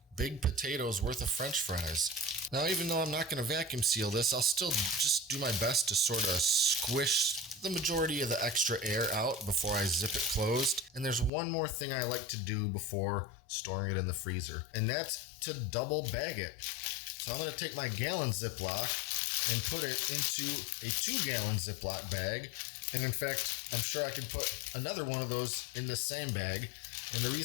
big potatoes worth of French fries. Now, even though I'm not going to vacuum seal this, I'll still just do my best to sort of squish the majority of the extra air out before I zip it closed. And there's one more thing I like to do before storing it in the freezer, and that's to double bag it. So I'm going to take my gallon Ziploc and put it into a 2-gallon Ziploc bag. And in fact, I'm sure I could put another one of those in this same bag. And the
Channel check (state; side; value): drops out; right; at 11.3 s